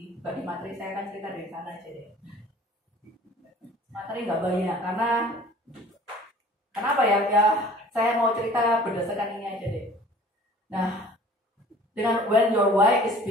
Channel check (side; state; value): both; normal; correlation 0.48